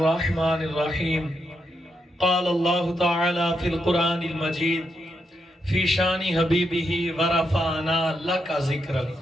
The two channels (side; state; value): both; normal; correlation 0.82